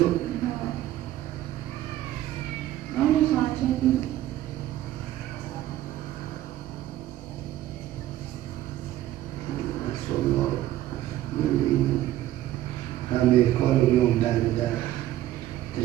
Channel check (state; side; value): quieter; left; 13.9 dB